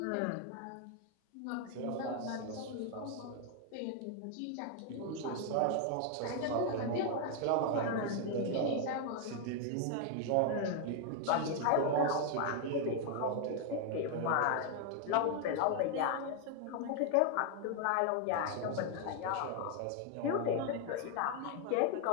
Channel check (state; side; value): different; both; correlation 0.00